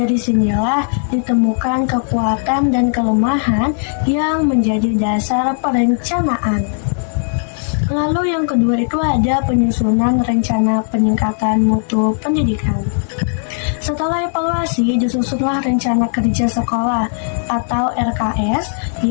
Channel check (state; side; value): silent; right; digital silence